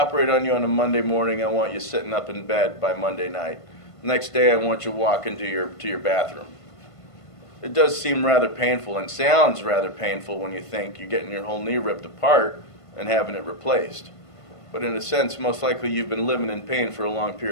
on you on a Monday morning, I want you sitting up in bed by Monday night. The next day, I want you walking to your bathroom. It does seem rather painful and sounds rather painful when you think you're getting your whole knee ripped apart and having it replaced. But in a sense, most likely you've been living in pain for a long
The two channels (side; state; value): right; late; 1.5 ms